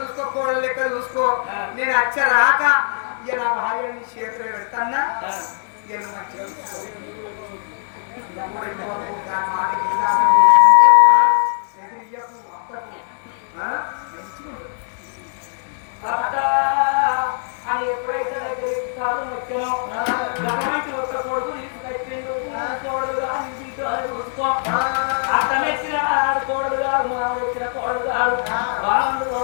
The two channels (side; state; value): right; silent; digital silence